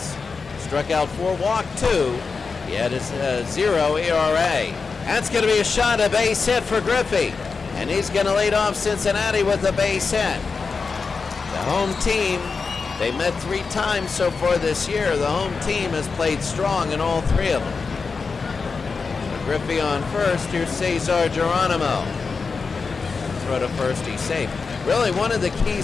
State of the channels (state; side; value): quieter; right; 4.8 dB